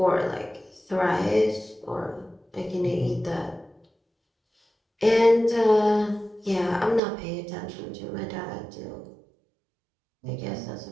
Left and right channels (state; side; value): drops out; left; at 7.0 s